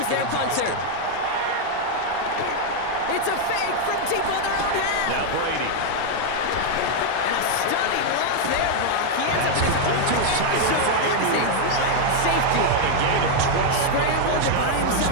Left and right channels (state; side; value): different; both; correlation 0.00